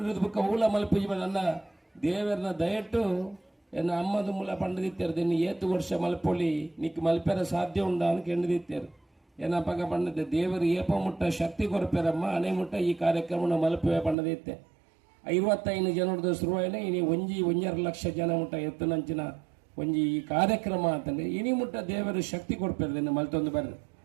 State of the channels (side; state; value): left; drops out; at 14.2 s